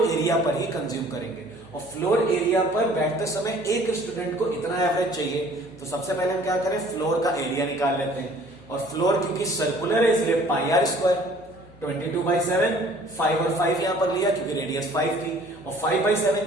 एरिया पर ही कंज्यूम करेंगे, और फ्लोर एरिया पर बैठते समय एक स्टूडेंट को इतना एवरेज चाहिए। तो सबसे पहले हम क्या करें, फ्लोर का एरिया निकाल लेते हैं, और फ्लोर क्योंकि सर्कुलर है इसलिए पाई आर स्क्वायर 22/7, 5 और 5 यहां पर लिया क्योंकि रेडियस 5 थी, और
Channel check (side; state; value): left; noise; hum, 24 dB below the sound